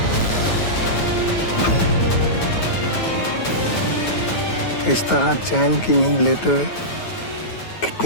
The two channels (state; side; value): late; right; 9.2 ms